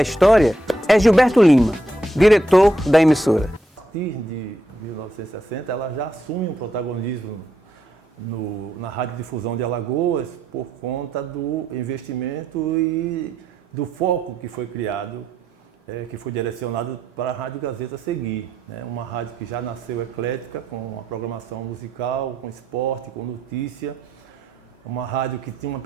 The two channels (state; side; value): normal; both; correlation 0.79